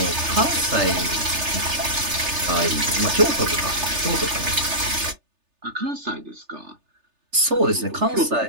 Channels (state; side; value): late; left; 3.3 ms